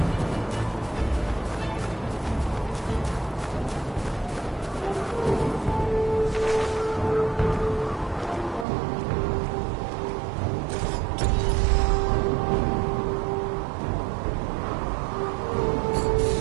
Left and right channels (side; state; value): left; drops out; at 8.7 s